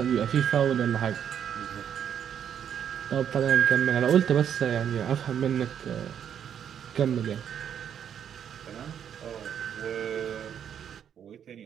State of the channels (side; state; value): left; quieter; 8.8 dB